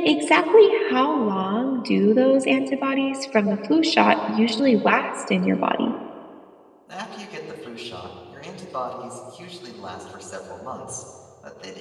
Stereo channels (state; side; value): identical; both; correlation 1.00